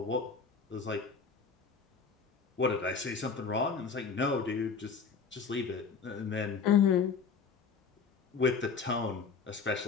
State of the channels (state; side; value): quieter; right; 5.4 dB